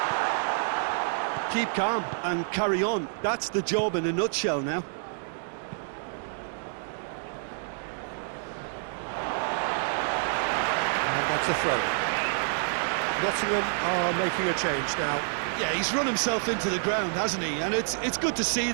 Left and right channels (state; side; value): silent; left; digital silence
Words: Keep calm and carry on. That's the job in a nutshell now. And that's a throw. Nottingham are making a change now. Yeah, he's run himself into the ground, hasn't he? And it's good to see